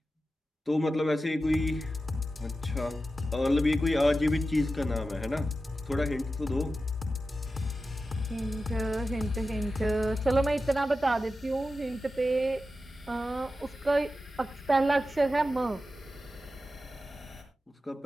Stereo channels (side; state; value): both; normal; correlation 0.92